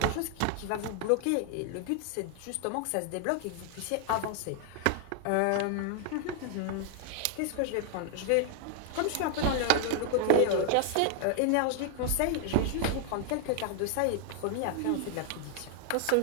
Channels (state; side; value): different; both; correlation 0.00